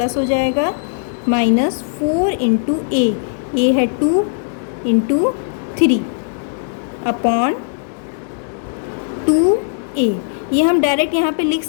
हो जाएगा माइनस 4 इंटू ए है 2 इंटू 3 अपॉन 2a। ये हम डायरेक्ट यहाँ पे लिख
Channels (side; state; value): right; silent; digital silence